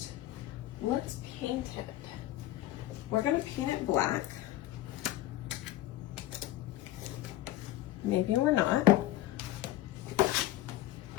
let's paint it. We're gonna paint it black. Maybe we're not.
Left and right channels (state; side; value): quieter; right; 14.8 dB